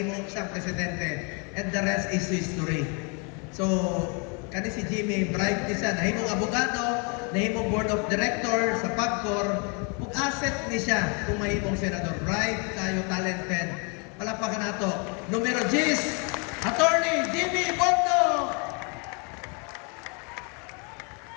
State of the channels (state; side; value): quieter; right; 34.7 dB